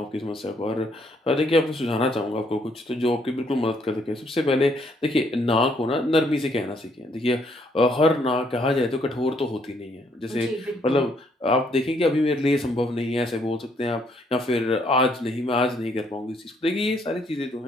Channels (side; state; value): both; normal; correlation 0.69